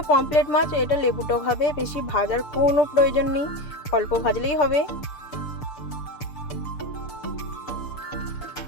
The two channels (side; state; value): right; late; 6.8 ms